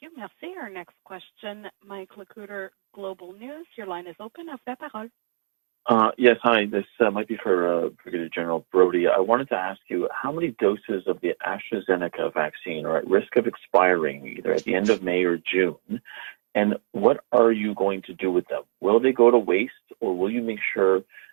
you. Merci. Our next question, Mike Lacuter, Global News. Your line is open. À vous la parole. Yes, hi. This might be for Brigadier General Brody. I wanted to ask you, how many doses of the AstraZeneca vaccine are at risk of expiring either at the end of May or June? And what are you going to do with them? Will they go to waste, or will you make sure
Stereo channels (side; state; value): left; silent; digital silence